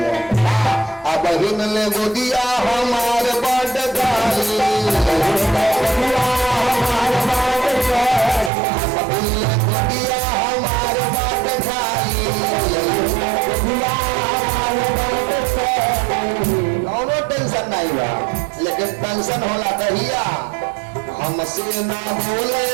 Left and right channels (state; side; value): drops out; left; at 8.5 s